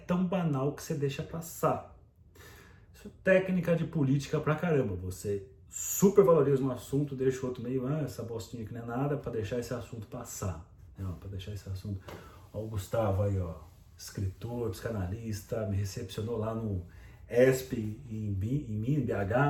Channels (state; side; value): identical; both; correlation 1.00